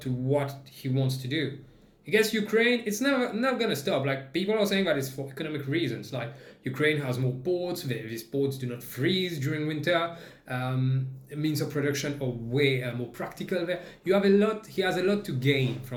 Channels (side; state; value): both; identical; correlation 1.00